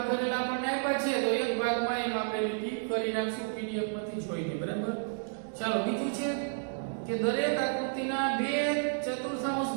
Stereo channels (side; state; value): left; silent; digital silence